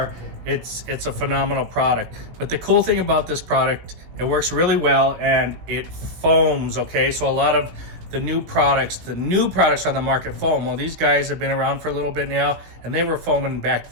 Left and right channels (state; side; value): late; left; 18 ms